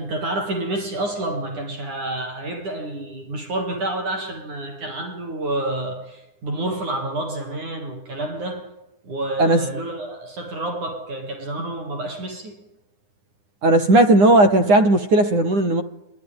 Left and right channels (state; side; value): late; left; 9.8 ms